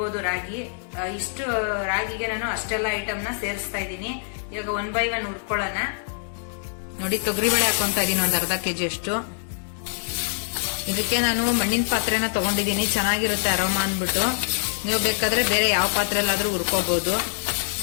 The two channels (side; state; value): right; silent; digital silence